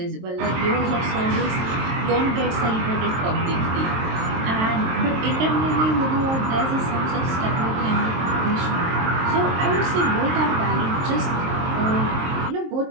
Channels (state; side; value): late; left; 23 ms